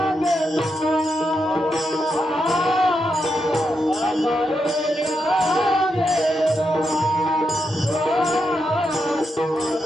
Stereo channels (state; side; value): normal; both; correlation 0.84